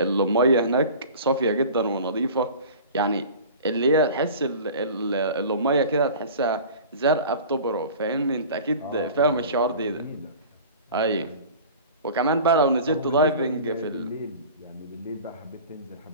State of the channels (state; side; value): inverted; both; correlation -0.40